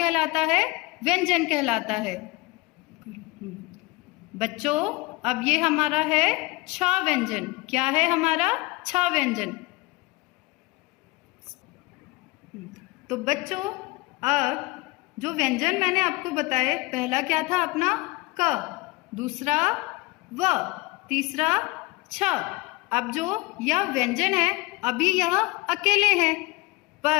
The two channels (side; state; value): right; quieter; 23.1 dB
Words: है? व्यंजन कहलाता है। बच्चों, अब ये हमारा है छ व्यंजन। क्या है हमारा? छ व्यंजन। तो बच्चों, अब जो व्यंजन मैंने आपको बताए, पहला क्या था अपना? क, दूसरा व, तीसरा छ। अब जो यह व्यंजन है, अभी यह अकेले हैं,